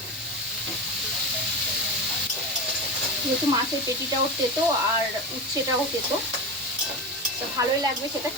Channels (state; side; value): normal; both; correlation 0.22